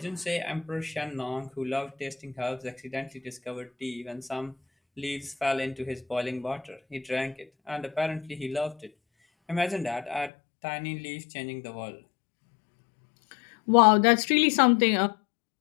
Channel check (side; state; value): right; drops out; at 10.3 s